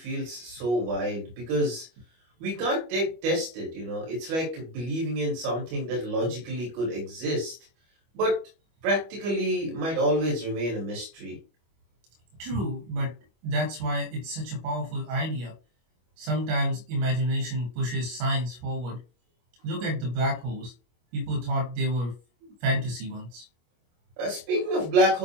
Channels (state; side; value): late; left; 25 ms